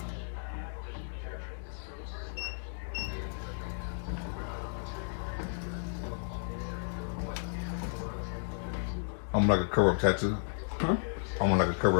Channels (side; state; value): right; silent; digital silence